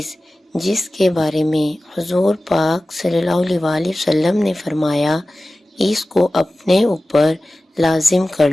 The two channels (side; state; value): both; normal; correlation 0.96